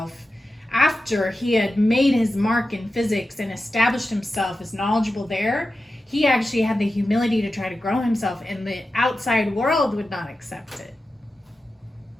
after he had made his mark in physics and established himself as knowledgeable there. He actually had the humility to try to grow himself, and the outside world would not accept it.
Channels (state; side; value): normal; both; correlation 0.92